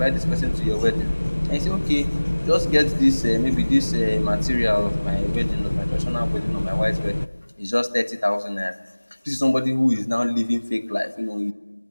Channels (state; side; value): inverted; both; correlation -1.00